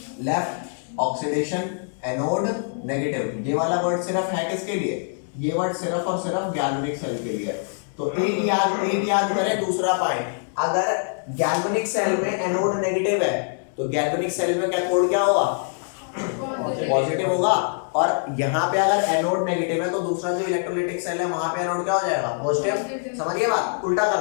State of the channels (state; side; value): silent; right; digital silence